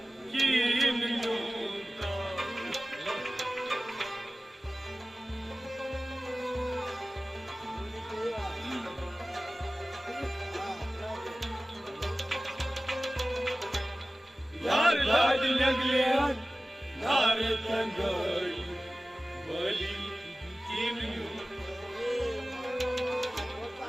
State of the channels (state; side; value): normal; both; correlation 0.97